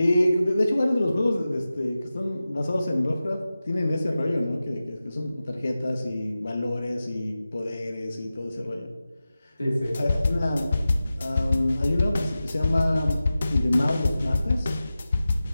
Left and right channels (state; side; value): inverted; both; correlation -0.94